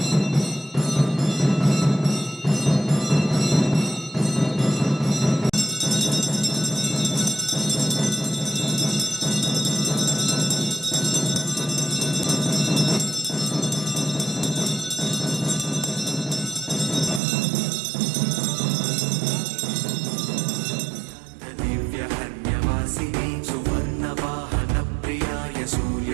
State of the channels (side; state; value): left; drops out; at 17.2 s